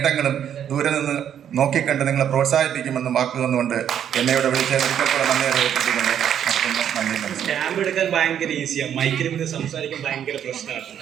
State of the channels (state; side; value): quieter; left; 9.4 dB